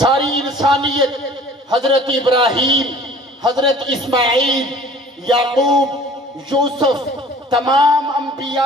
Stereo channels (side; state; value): both; normal; correlation 0.49